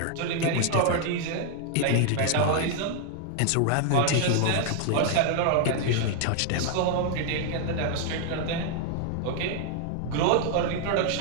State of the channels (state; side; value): different; both; correlation 0.00